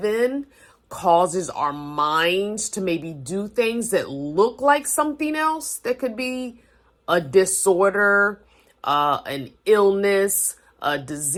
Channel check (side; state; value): both; identical; correlation 1.00